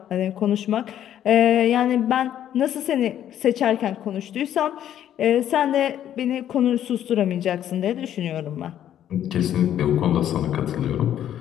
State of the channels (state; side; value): quieter; right; 10.8 dB